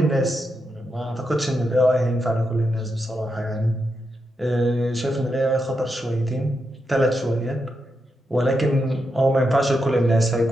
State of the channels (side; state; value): both; normal; correlation 0.85